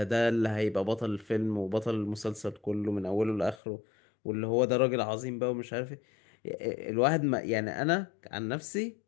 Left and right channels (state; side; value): drops out; right; at 3.6 s